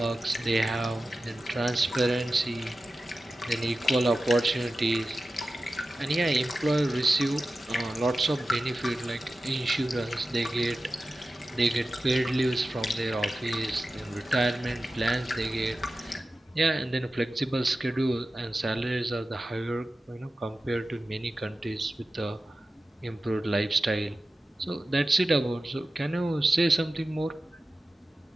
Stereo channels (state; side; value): normal; both; correlation 0.94